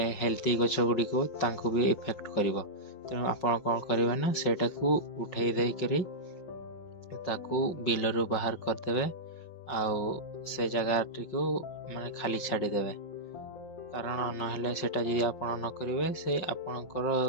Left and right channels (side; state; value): right; late; 5.6 ms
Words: ହେଲ୍ଦି ଗଛ ଗୁଡ଼ିକୁ ତାଙ୍କୁ ବି ଇଫେକ୍ଟ କରିବ। ତେଣୁ ଆପଣ କ'ଣ କରିବେ ନା, ସେଇଟାକୁ ଉଠେଇ ଦେଇକରି ତାକୁ ବିଲରୁ ବାହାର କରିଦେବେ ଆଉ ସେ ଜାଗାଟିକୁ ଖାଲି ଛାଡ଼ିଦେବେ। କାରଣ ନହେଲେ ସେଇଟା ଯଦି ଆପଣ ନ କରିବେ, ସେ ଆପଣଙ୍କର